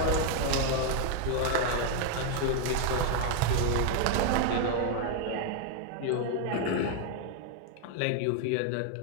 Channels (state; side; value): different; both; correlation 0.00